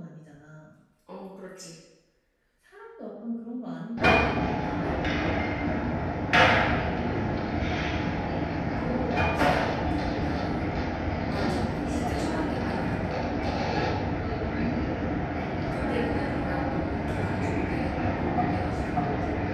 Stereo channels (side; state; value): both; identical; correlation 1.00